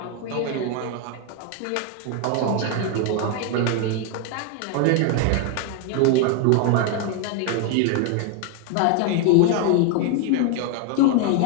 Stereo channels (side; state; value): both; different; correlation 0.01